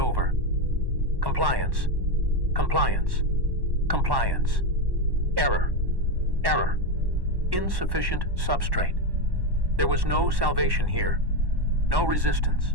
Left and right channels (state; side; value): late; left; 1.1 ms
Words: Compliance, compliance, compliance. Error, error. Insufficient substrate. There was no salvation here, no resistance.